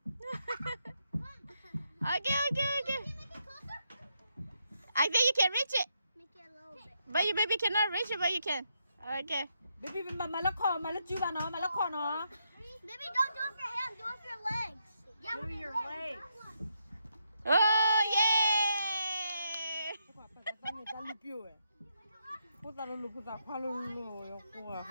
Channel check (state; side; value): inverted; both; correlation -0.80